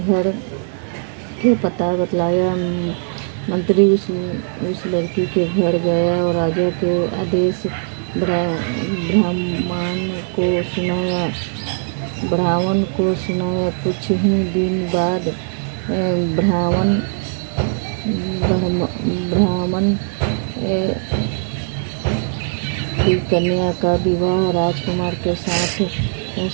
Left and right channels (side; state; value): left; silent; 58 dB below the other